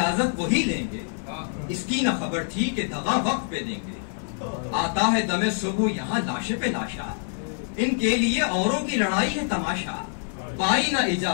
وہی لیں گے اس کی نہ خبر تھی کہ دغا وقت پہ دیں گے آتا ہے دم صبح یہاں لاشے پہ لاشا ان کے لیے اوروں کی لڑائی ہے تماشا پائی نہ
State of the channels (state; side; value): silent; right; digital silence